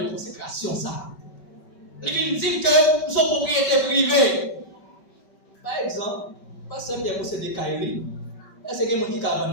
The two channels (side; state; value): right; late; 5.2 ms